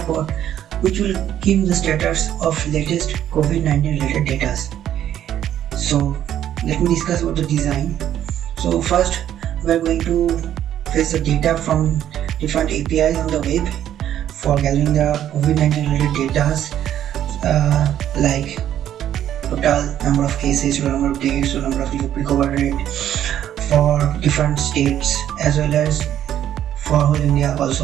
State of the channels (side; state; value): left; quieter; 11.0 dB